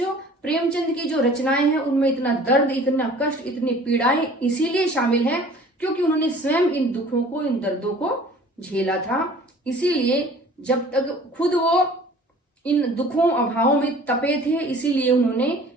प्रेमचंद की जो रचनाएं हैं उनमें इतना दर्द, इतना कष्ट, इतनी पीड़ाएं इसीलिए शामिल हैं क्योंकि उन्होंने स्वयं इन दुखों को, इन दर्दों को झेला था। इसीलिए जब तक खुद वो इन दुखों अभावों में तपे थे, इसीलिए उन्होंने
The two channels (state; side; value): normal; both; correlation 0.48